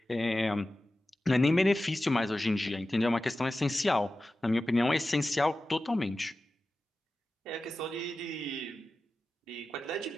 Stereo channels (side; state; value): both; normal; correlation 0.94